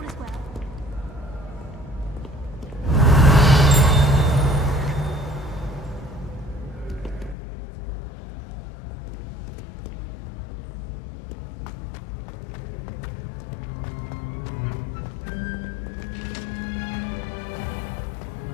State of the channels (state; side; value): drops out; right; at 7.4 s